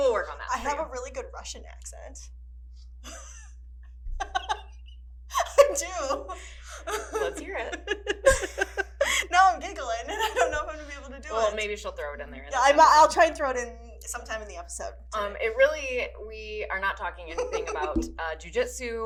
work on that. I have a really good Russian accent. I do. Let's hear it. Now I'm giggling, and I don't know if I'm gonna be able to do it. Well, maybe she'll throw it in there. Yeah, I'll try and throw it in sometime in the episode. We are not talking anything about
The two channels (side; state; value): both; identical; correlation 1.00